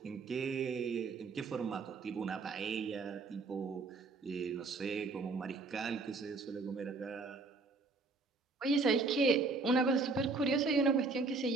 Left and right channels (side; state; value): left; quieter; 3.9 dB